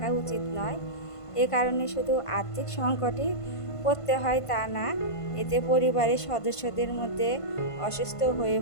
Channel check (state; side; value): late; right; 1.5 ms